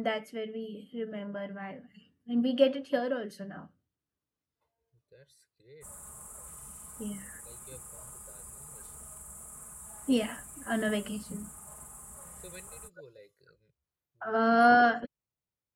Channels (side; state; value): both; identical; correlation 1.00